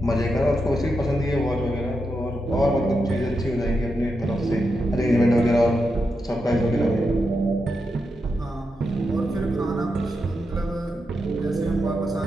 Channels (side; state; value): both; normal; correlation 0.86